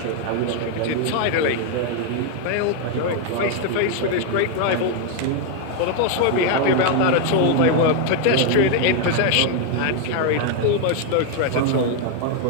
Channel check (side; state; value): both; different; correlation 0.01